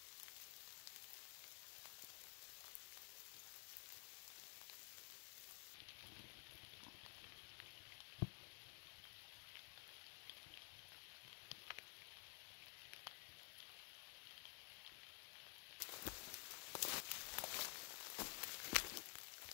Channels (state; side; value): quieter; right; 29.3 dB